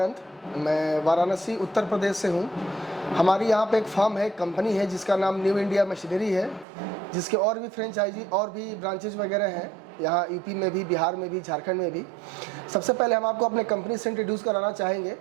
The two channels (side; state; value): left; drops out; at 6.7 s